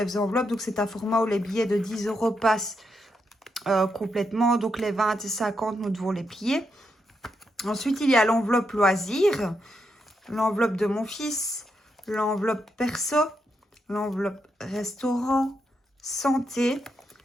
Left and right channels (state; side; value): normal; both; correlation 0.82